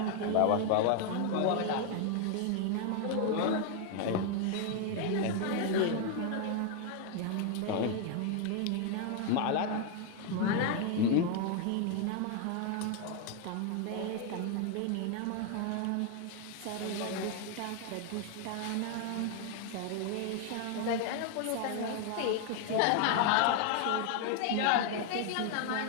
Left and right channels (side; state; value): both; different; correlation 0.00